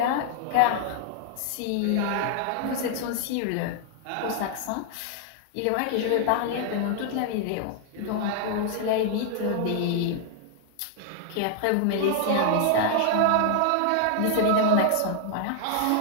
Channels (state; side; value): different; both; correlation 0.00